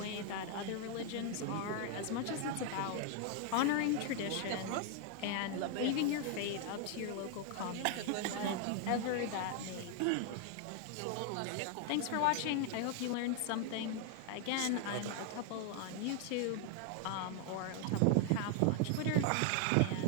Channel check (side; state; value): both; different; correlation 0.00